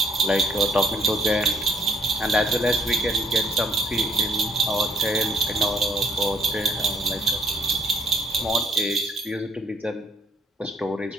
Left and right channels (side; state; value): both; normal; correlation 0.66